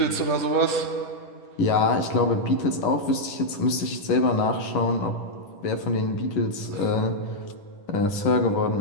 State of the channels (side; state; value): right; late; 10 ms